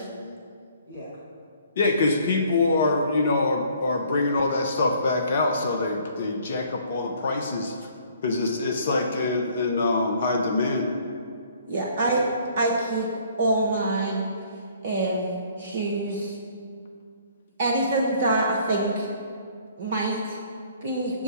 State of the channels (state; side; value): inverted; both; correlation -0.59